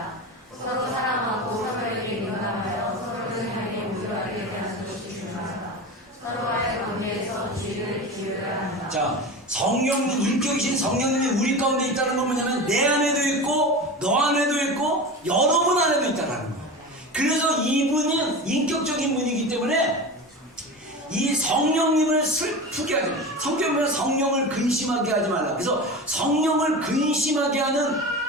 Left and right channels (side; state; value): both; normal; correlation 0.28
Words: 서로 사랑하고 서로에게 민감하여 서로를 향해 우월하게 대하는 것이 중요하다. 서로와의 관계에서 주의를 기울여야 한다. 자, 성령님, 인격이신 성령님이 우리 가운데 있다는 건 뭐냐면 내 안에도 있고 너 안에도 있고 여러분 안에도 있다는 거예요. 그래서 이분은 인격적인 분이기 때문에 이 성령님을 슬프게 하지 말라. 성경은 성령을 근심하게 하지 말라. 그래서 성령을 근심하게 하는